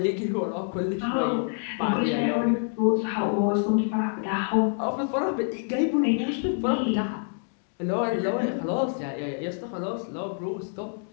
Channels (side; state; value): right; silent; 60 dB below the other